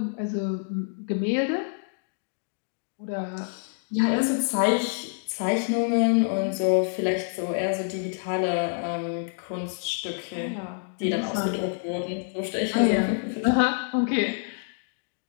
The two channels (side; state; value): right; silent; digital silence